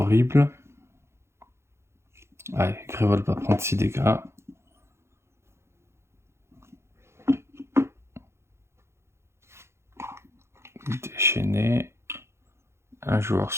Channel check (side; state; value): left; late; 0.13 ms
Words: Allez, Grévol va prendre 6 dégâts. Déchaîné. Un joueur